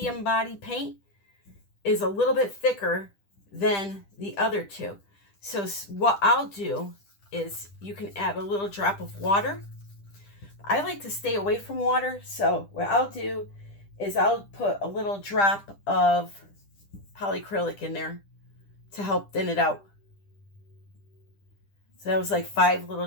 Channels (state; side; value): late; right; 10 ms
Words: body paint, is a little bit thicker than the other two. So what I'll do is you can add a little drop of water. I like to stay away from water, so what I'll do is I'll put a little drop of polycrylic in there to help thin it out. So that was like 5